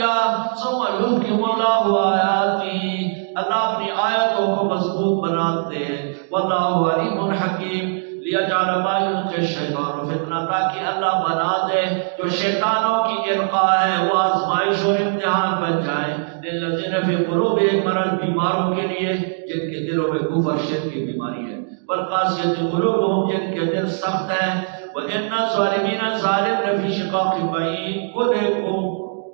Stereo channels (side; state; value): left; silent; digital silence